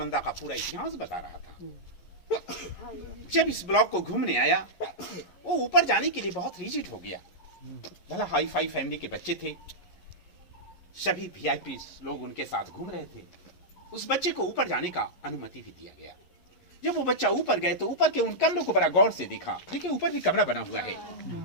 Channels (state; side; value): late; right; 11 ms